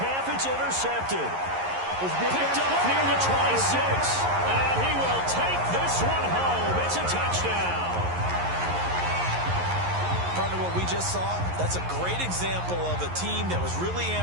it's intercepted. Picked up near the 26. And he will take this one home. It's a touchdown. Partner, what we just saw, that's a great example of a team that was really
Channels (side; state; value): left; late; 11 ms